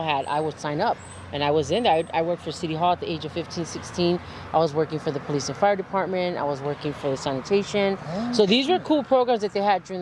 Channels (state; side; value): identical; both; correlation 1.00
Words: had, I would sign up, and I was in there. I worked for City Hall at the age of 15, 16. I was working for the police and fire department. I was working for the sanitation. So these were cool programs that they had during